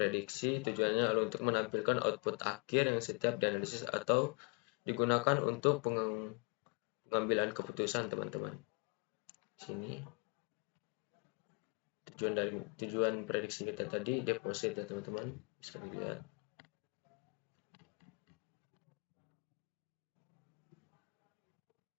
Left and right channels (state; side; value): quieter; right; 33.3 dB